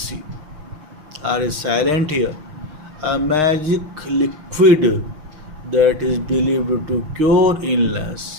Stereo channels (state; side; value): late; left; 6.5 ms